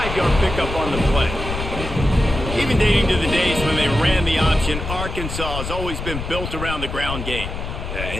pickup on the play. Even dating to the days when they ran the option, Arkansas has always been built around the ground game. Yeah,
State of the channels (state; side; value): noise; left; rumble, 6 dB below the sound